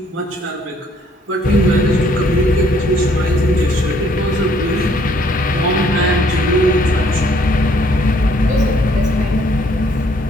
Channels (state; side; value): normal; both; correlation 0.64